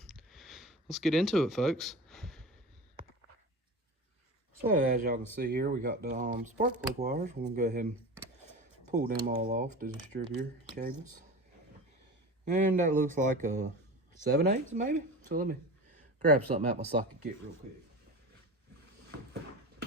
let's get into it, folks. So as y'all can see here, we got the spark plug wires. We're gonna go ahead and pull them all off, the distributor cables. And that looks like a 7/8 maybe. So let me grab something out my socket kit real quick.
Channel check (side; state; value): both; normal; correlation 0.31